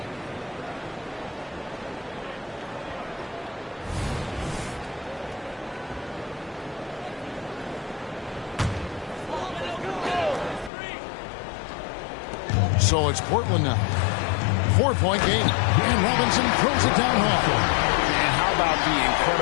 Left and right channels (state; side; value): drops out; right; at 10.7 s